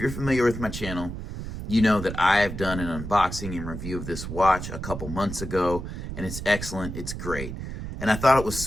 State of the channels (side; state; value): right; noise; rumble, 7 dB below the sound